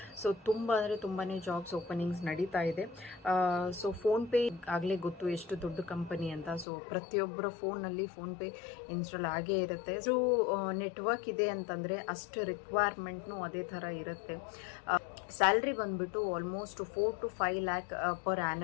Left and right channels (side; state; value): right; drops out; at 6.7 s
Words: ಸೊ ತುಂಬಾ ಜಾಬ್ಸ್ ಓಪನಿಂಗ್ಸ್ ನಡೀತಾ ಇದೆ. ಸೊ ಫೋನ್ಪೇ ಆಗಲೇ ಗೊತ್ತು ಎಷ್ಟು ದೊಡ್ಡ ಕಂಪನಿ ಅಂತ. ಸೊ ಪ್ರತಿಯೊಬ್ಬರ ಫೋನಲ್ಲಿ ಫೋನ್ಪೇ ಇನ್ಸ್ಟಾಲ್ ಆಗೇ ಇರುತ್ತೆ. ಸೊ ನೆಟ್ವರ್ಕ್ ಇದೆ ಅಂತಂದರೆ ಅಷ್ಟು ರಿಕ್ವೈರ್ಮೆಂಟ್ನು ಅದೇ ಥರ ಇರುತ್ತೆ. ಸ್ಯಾಲ್ರಿ ಬಂದ್ಬಿಟ್ಟು almost 4 to 5 lakh per